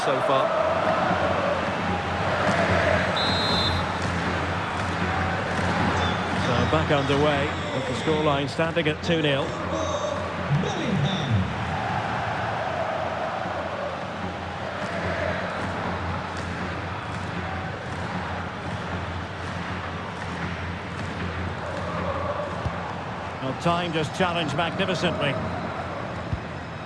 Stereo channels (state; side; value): identical; both; correlation 1.00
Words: far. So back underway, with the scoreline standing at 2-0. Well, time just challenged magnificently.